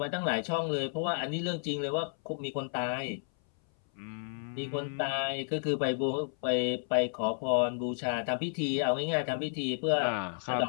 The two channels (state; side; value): silent; right; 57 dB below the other